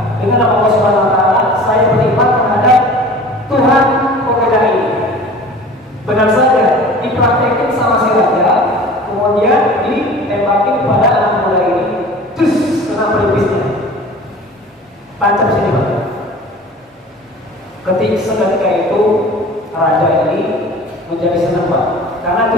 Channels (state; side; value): normal; both; correlation 0.42